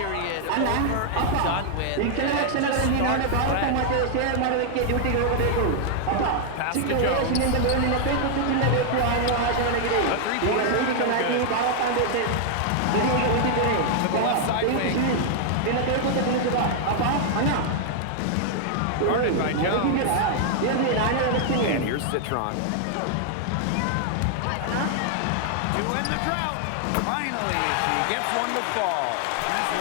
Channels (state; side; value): different; both; correlation 0.00